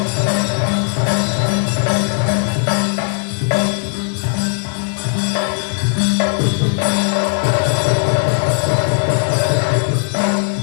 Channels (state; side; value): silent; right; digital silence